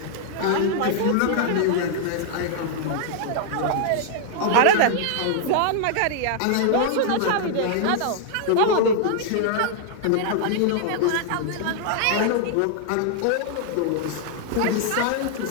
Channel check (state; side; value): different; both; correlation -0.01